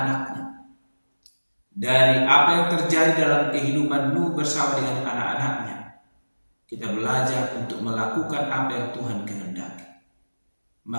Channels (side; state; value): both; inverted; correlation -1.00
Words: Dari apa yang terjadi dalam kehidupan Nuh bersama dengan anak-anaknya, kita belajar untuk melakukan apa yang Tuhan kehendaki.